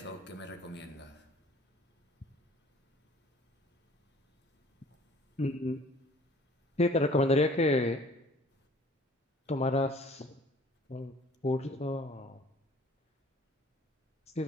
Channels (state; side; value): normal; both; correlation 0.53